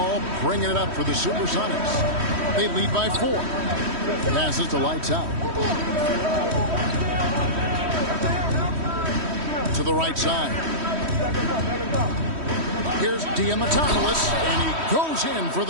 bringing it up for the Supersonics. They lead by 4. Passes to Lights Out. To the right side. Here's Diamatopoulos, and he goes in for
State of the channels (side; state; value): left; late; 3.1 ms